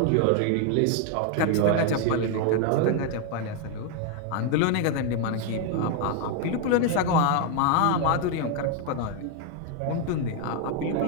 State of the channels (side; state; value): both; different; correlation 0.00